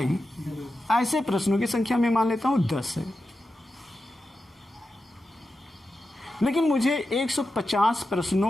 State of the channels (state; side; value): normal; both; correlation 0.90